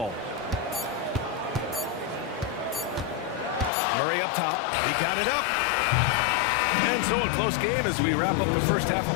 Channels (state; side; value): drops out; right; at 3.7 s